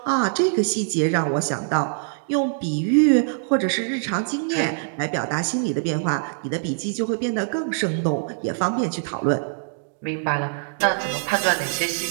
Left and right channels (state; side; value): silent; left; digital silence